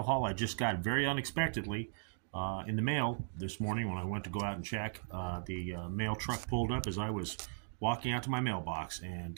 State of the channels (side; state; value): left; silent; digital silence